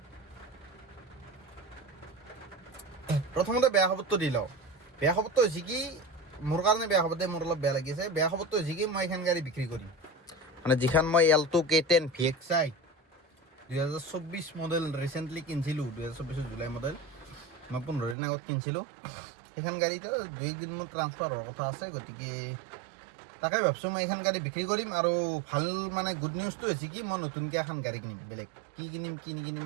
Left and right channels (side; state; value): left; drops out; at 18.2 s